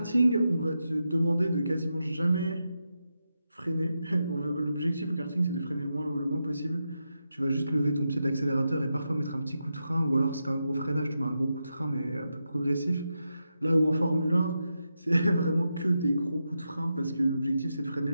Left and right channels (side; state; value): both; inverted; correlation -0.87